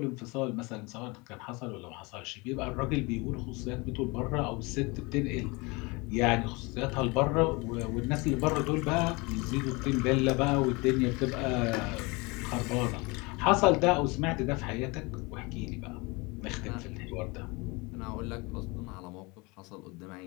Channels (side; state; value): right; quieter; 26.4 dB